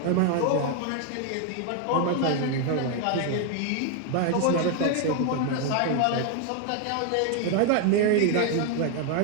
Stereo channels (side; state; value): both; different; correlation 0.00